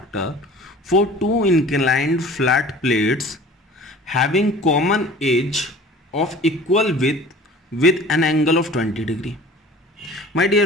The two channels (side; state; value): both; normal; correlation 0.45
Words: for 2 inclined flat plates having common edge of equal with an angle of 20 degree. माय